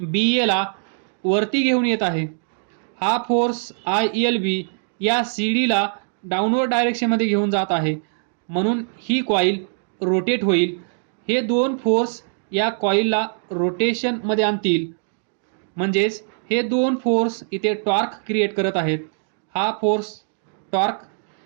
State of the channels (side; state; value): left; silent; digital silence